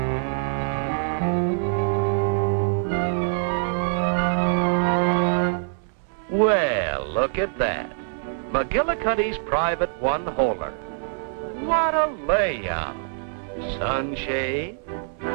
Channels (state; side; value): silent; left; digital silence